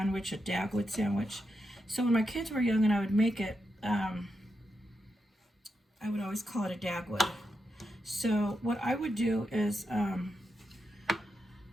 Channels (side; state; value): both; normal; correlation 0.86